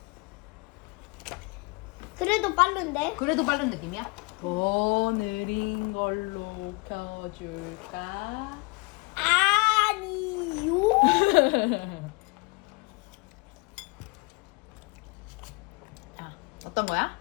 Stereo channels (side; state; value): right; quieter; 27.7 dB